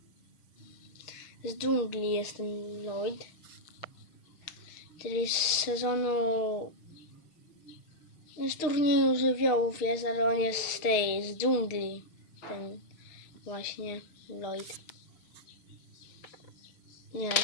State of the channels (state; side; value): late; right; 6.5 ms